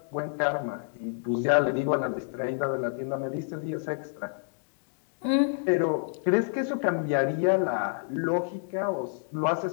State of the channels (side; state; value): right; silent; digital silence